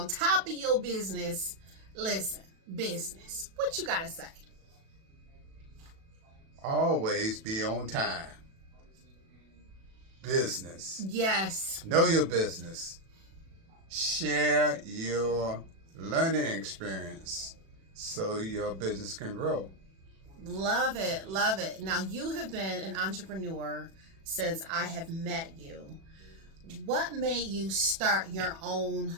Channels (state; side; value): late; left; 36 ms